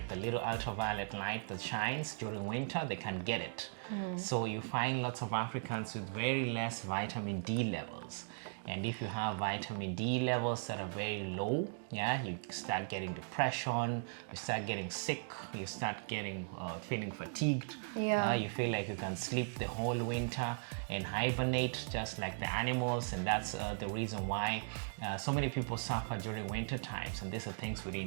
the little ultraviolet light that shines during winter, they can get it. So you find lots of Africans with very less vitamin D levels. And if you have vitamin D levels that are very low, yeah, you start getting depression, you start getting sick, you start getting feeling fatigued. Yeah. You feel like you can sleep the whole winter and hibernate just like the animals, and that's the reason why so many people suffer during winter times, and these are things we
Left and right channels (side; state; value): left; silent; digital silence